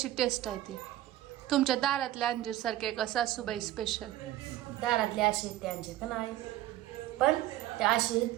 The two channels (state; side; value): quieter; left; 14.4 dB